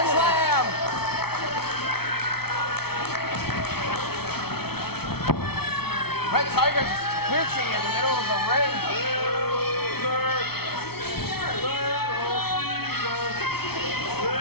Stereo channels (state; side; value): late; right; 0.95 ms